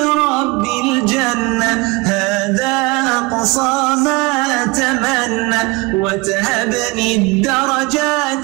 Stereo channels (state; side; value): quieter; left; 25.4 dB